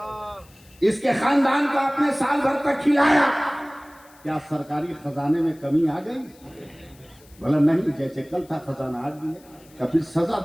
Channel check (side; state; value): left; noise; hiss, 27 dB below the sound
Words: اس کے خاندان کو آپ نے سال بھر تک کھلایا، کیا سرکاری خزانے میں کمی آ گئی؟ بولا نہیں، جیسے کل تھا خزانہ آج بھی ہے. کہ پھر سزا